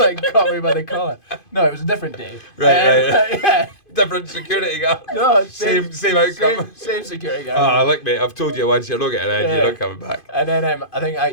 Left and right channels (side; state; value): right; late; 2.5 ms